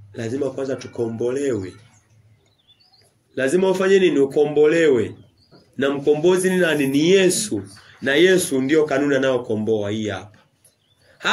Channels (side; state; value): both; identical; correlation 1.00